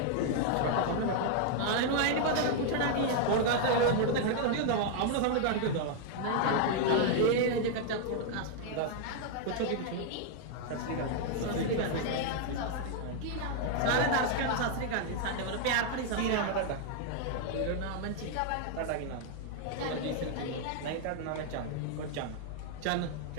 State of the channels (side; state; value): both; different; correlation 0.00